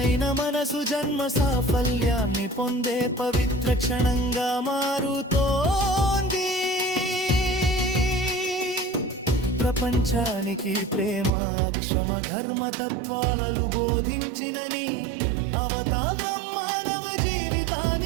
మనసు జన్మ సాఫల్యాన్ని పొందే పవిత్ర క్షణంగా మారుతోంది. ప్రపంచానికి ప్రేమ క్షమ ధర్మ తత్వాలను బోధించినని అవతారం మానవ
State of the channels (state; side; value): drops out; left; at 11.3 s